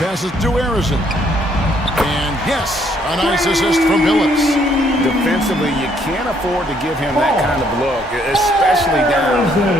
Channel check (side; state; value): both; normal; correlation 0.68